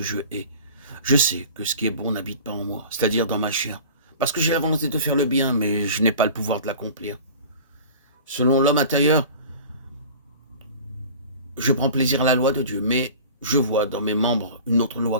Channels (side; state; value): both; inverted; correlation -0.40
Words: je hais. Je sais que ce qui est bon n'habite pas en moi, c'est-à-dire dans ma chair, parce que j'ai la volonté de faire le bien, mais je n'ai pas le pouvoir de l'accomplir. Selon l'homme intérieur, je prends plaisir à la loi de Dieu, mais je vois dans mes membres une autre loi